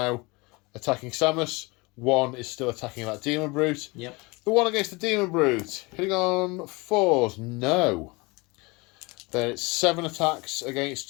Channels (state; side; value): quieter; right; 25.7 dB